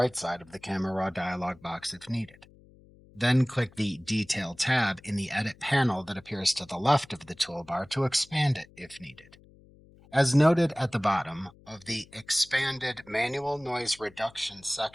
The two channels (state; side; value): noise; left; hum, 25 dB below the sound